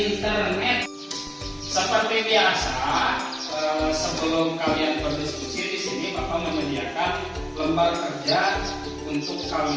Seperti biasa, sebelum kalian berdiskusi di sini, Bapak menyediakan lembar kerja untuk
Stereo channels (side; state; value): both; identical; correlation 1.00